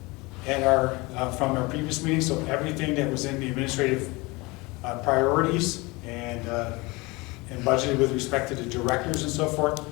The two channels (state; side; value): quieter; right; 24.4 dB